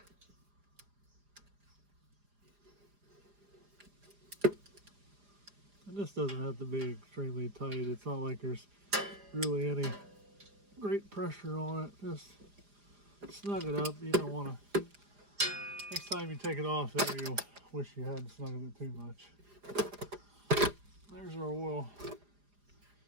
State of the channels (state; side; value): late; left; 4.9 ms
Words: And this doesn't have to be extremely tight. It's not like there's really any great pressure on it. Just snug it up. You don't want to. Next time you take it off there, you'll wish you hadn't snuggled it too much. There's our oil.